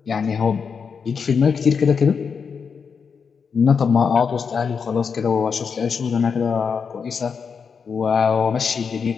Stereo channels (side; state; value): right; quieter; 6.0 dB